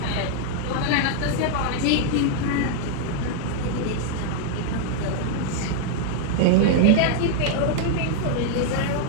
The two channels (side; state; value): both; different; correlation 0.00